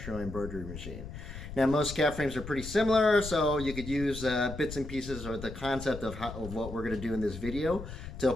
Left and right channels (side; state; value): left; noise; rumble, 10 dB below the sound